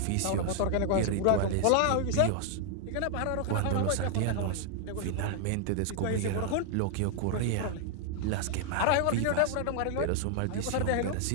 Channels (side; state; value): both; different; correlation 0.00